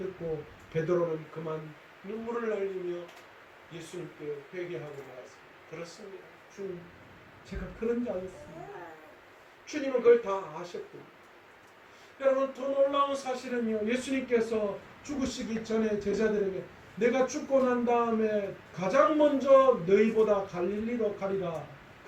베드로는 그만 눈물을 흘리며 예수님께 회개하고 나왔습니다. 그렇습니다. 주님, 제가 그런 자였습니다. 주님은 그걸 다 아셨군요. 여러분, 더 놀라운 사실은요, 예수님께서 죽으시기 전에 제자들에게 내가 죽고 난 다음에 가장 먼저 너희보다 갈릴리로 가리라,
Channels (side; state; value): both; identical; correlation 1.00